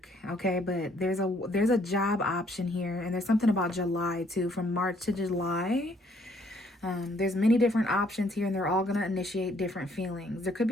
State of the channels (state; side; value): normal; both; correlation 0.66